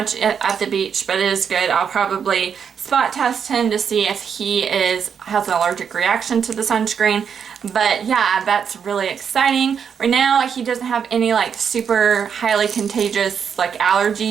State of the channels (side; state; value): left; quieter; 7.2 dB